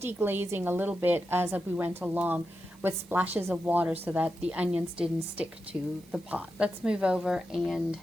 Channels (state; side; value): normal; both; correlation 0.89